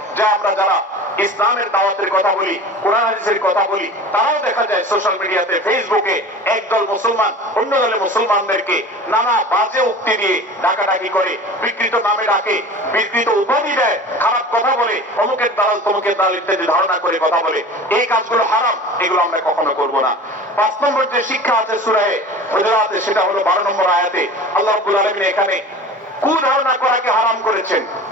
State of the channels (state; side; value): normal; both; correlation 0.37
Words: যে আমরা যারা ইসলামের দাওয়াতের কথা বলি, কোরআন হাদিসের কথা বলি, তারাও দেখা যায় সোশ্যাল মিডিয়াতে, ফেসবুকে একদল মুসলমান অন্য দলের মুসলমানদেরকে নানা বাজে উক্তি দিয়ে ডাকাডাকি করে, বিকৃত নামে ডাকে, বিকৃত উপাধি দেয়, খারাপ কথা বলে, অমুকের দালাল তমুকের দালাল ইত্যাদি ধারণা করে কথা বলে। এই কাজগুলো হারাম, এগুলো আমরা কখনো করব না। 5 নম্বর যে শিক্ষা আছে সূরা হুজুরাতে, সেটা হলো 12 নম্বর আয়াতে আল্লাহ রাব্বুল আলামিন এখানে কুধারণা করাকে হারাম করেছেন,